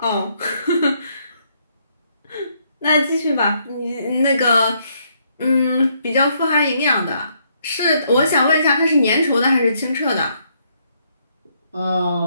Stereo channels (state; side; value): inverted; both; correlation -0.72